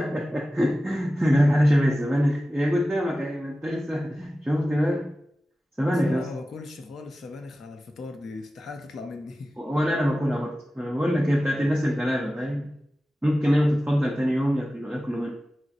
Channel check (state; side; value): normal; both; correlation 0.95